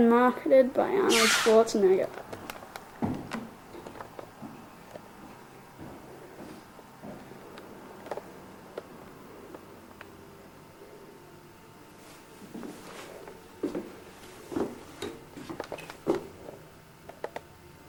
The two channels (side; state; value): both; identical; correlation 1.00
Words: marketed by Arnold Schwarzenegger.